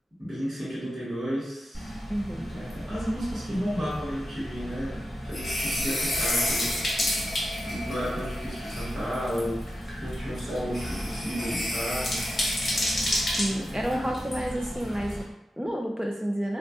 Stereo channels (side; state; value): both; normal; correlation 0.91